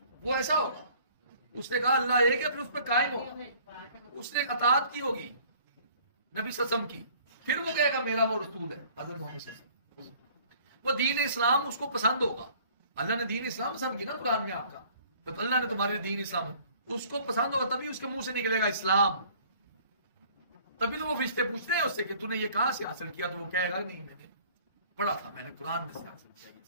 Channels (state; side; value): inverted; both; correlation -0.54